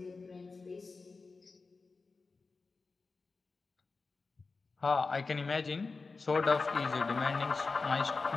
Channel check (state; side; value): quieter; right; 4.1 dB